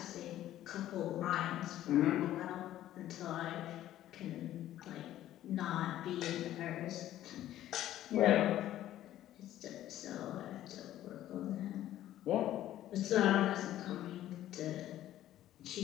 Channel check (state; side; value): quieter; right; 13.1 dB